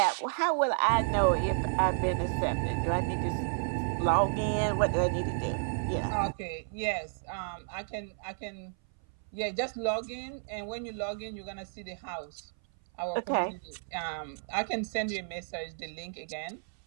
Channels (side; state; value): left; silent; 56 dB below the other